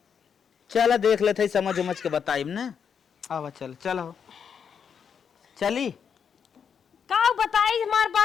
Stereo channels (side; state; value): right; quieter; 7.1 dB